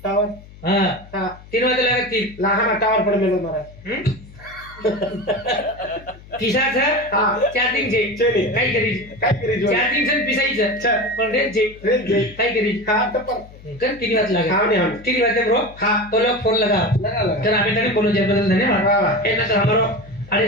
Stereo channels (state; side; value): noise; left; hum, 20 dB below the sound